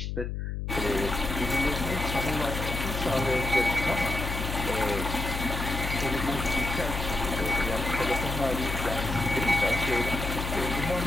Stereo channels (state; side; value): noise; left; hum, 4 dB below the sound